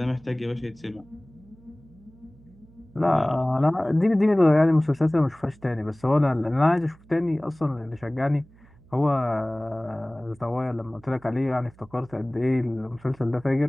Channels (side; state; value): right; noise; hum, 26 dB below the sound